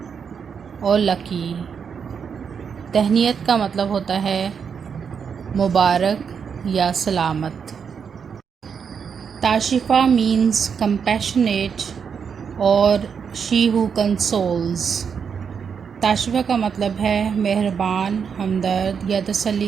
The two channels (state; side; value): quieter; left; 6.7 dB